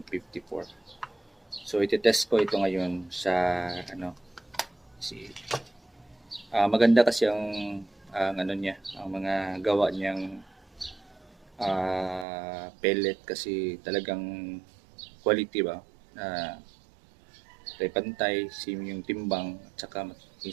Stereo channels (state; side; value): drops out; left; at 12.2 s